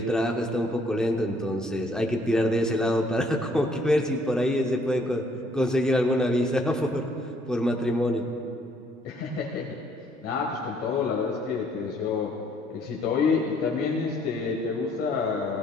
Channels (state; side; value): normal; both; correlation 0.65